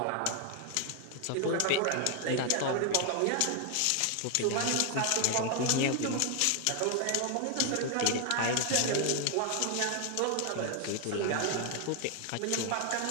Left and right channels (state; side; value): different; both; correlation 0.00